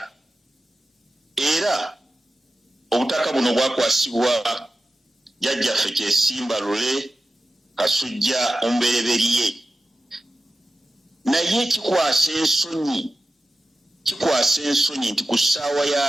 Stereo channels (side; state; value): both; normal; correlation 0.93